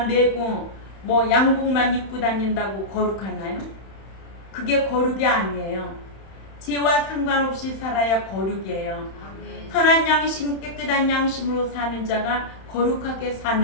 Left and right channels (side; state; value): right; late; 31 ms